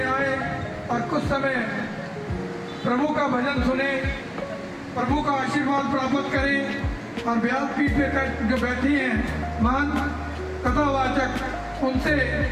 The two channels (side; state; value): both; identical; correlation 1.00